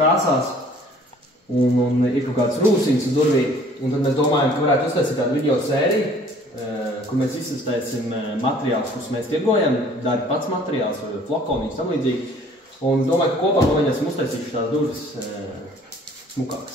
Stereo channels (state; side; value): normal; both; correlation 0.54